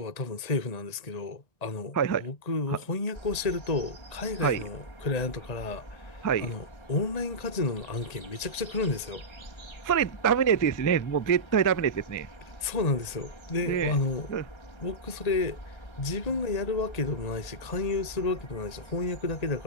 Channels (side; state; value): right; late; 1.8 ms